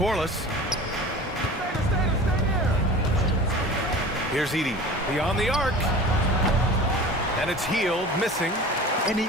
Here's Edey. Beyond the arc. And it's Hield missing. And he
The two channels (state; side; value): normal; both; correlation 0.38